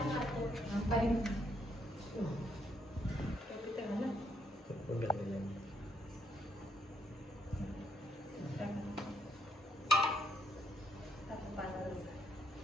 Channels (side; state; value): both; normal; correlation 0.74